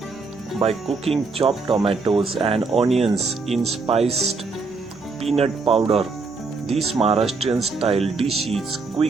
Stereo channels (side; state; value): left; quieter; 4.2 dB